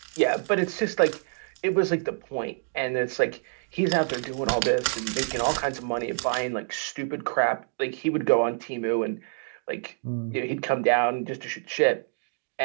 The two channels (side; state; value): left; silent; 60 dB below the other